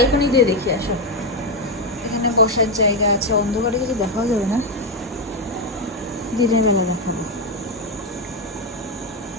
দিয়ে দেখি আসো, এখানে বসার জায়গা আছে, অন্ধকারে কিছু দেখাও যাবে না, দিনের বেলা দেখাবো।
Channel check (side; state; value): both; normal; correlation 0.07